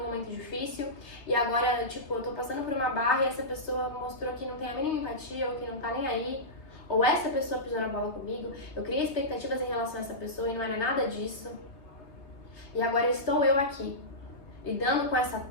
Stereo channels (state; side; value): late; right; 3.3 ms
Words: momento difícil e agora, tipo, eu tô passando por uma barra e essa pessoa mostrou que não tem a mínima empatia ou que não tá nem aí. Ou essa pessoa pisou na bola comigo, eu criei expectativas em relação a essa pessoa e não era nada disso. E agora estou eu aqui, lidando com essa